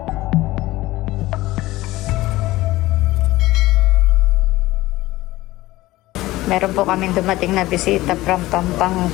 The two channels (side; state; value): right; quieter; 17.8 dB